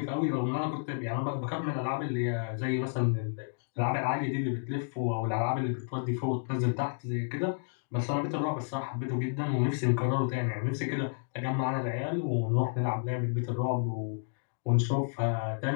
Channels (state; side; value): silent; right; digital silence